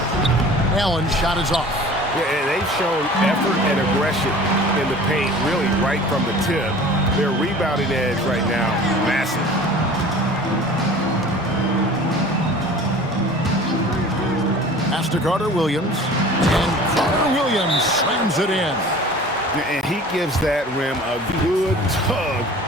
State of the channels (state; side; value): normal; both; correlation 0.43